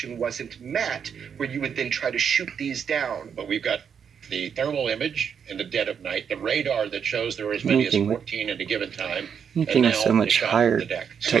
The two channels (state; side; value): quieter; left; 7.3 dB